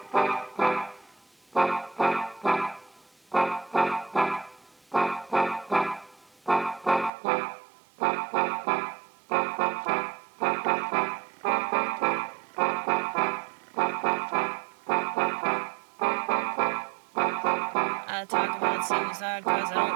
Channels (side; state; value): left; drops out; at 7.1 s